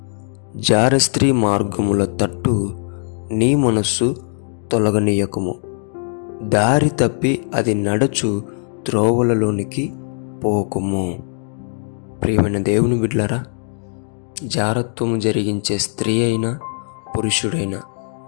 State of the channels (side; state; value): right; silent; digital silence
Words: జారస్త్రీ మార్గముల తట్టు నీ మనస్సు తొలగనీయకుము, దారి తప్పి అది నడచు త్రోవలలోనికి పోకుము. ప్రియమైన దేవుని బిడ్డలారా, జారత్వము జరిగించే స్త్రీ అయినా పురుషుడైన